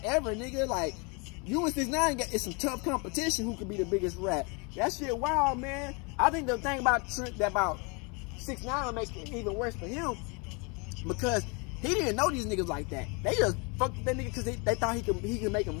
ever, nigga. Like, you and 6ix9ine, it's some tough competition who could be the biggest rat. That shit wild, man. I think the thing about 6ix9ine will make it even worse for him, because he didn't know these niggas like that. They just fucked with that nigga because they thought he could make a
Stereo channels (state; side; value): quieter; right; 31.7 dB